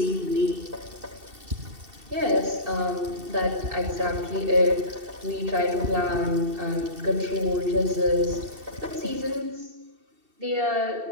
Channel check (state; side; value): late; left; 2.7 ms